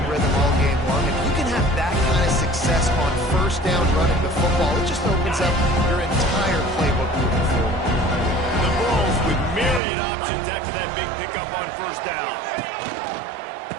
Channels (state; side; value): drops out; left; at 9.8 s